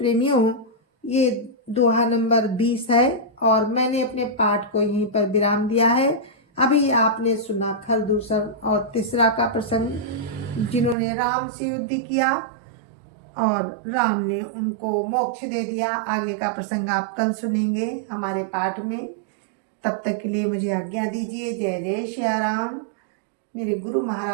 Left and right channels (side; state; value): left; drops out; at 11.0 s